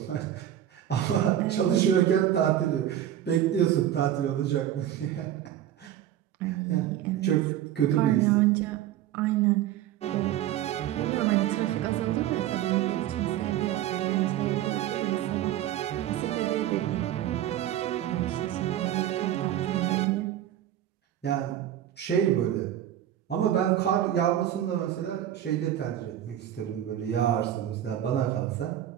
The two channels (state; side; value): quieter; left; 11.7 dB